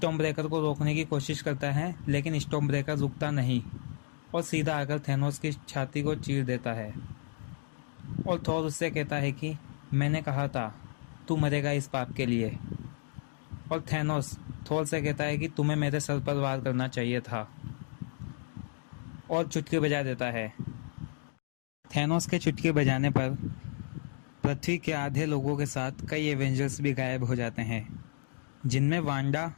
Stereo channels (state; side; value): silent; right; digital silence